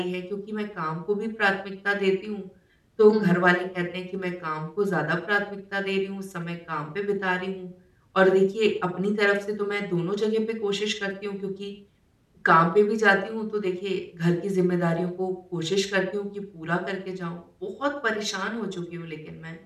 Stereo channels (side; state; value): both; identical; correlation 1.00